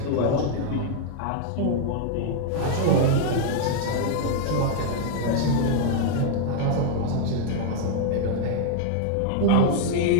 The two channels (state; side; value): different; both; correlation 0.00